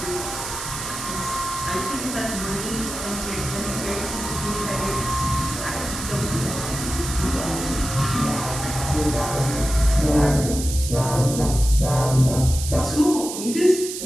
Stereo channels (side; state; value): right; noise; hiss, 7 dB below the sound